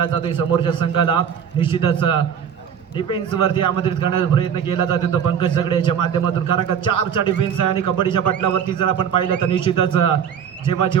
जातोय. समोरच्या संघाला निश्चितच डिफेन्स वरती आमंत्रित करण्याचा प्रयत्न केला जातो तो पंकज जगडे याच्या माध्यमातून. कारण का 4चा डिफेन्स आहे आणि कबड्डीच्या पटलावरती जर आपण पाहिलं तर निश्चितच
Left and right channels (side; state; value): left; quieter; 8.1 dB